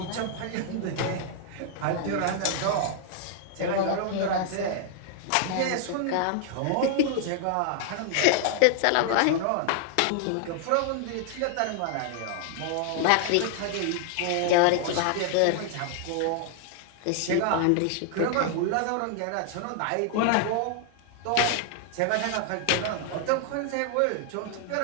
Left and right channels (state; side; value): different; both; correlation 0.00